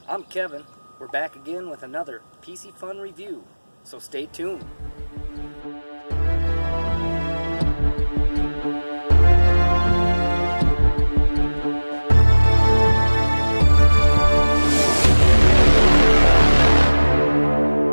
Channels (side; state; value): both; inverted; correlation -1.00